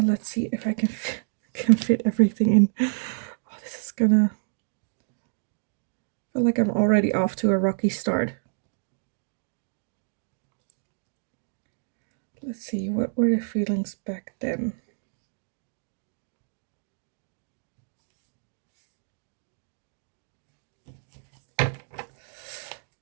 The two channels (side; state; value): left; silent; digital silence